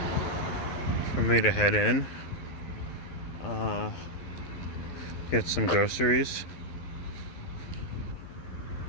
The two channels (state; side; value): late; right; 12 ms